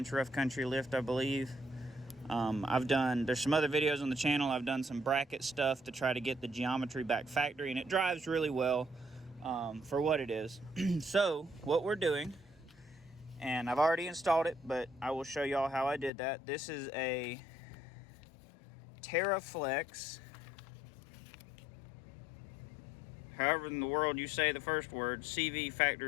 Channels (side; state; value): right; drops out; at 16.1 s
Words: rough country lift, I believe. There's some other videos on the channel. I've done some bracket stuff to try to get the geometry back factory, and it drives really well. For what it is. So what we're doing, and I've already installed it, but I will show y'all how I did that. This is a Terraflex, however in the world you say the first word, CV